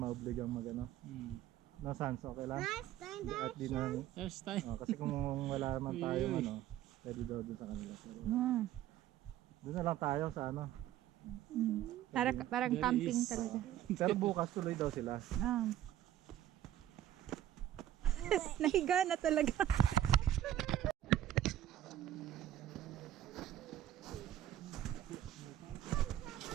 mag ano. No, Sans, okay lang? At di na, First time. kasi kung wala naman tayong Uy. ano, pwede daw doon sa kanila. Pero, Ah. doon na lang tayo sa ano. Parang There camping is- talaga. Pero bukas tuloy daw sila. Ah. Nahiga na talaga.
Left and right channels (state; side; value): quieter; left; 12.0 dB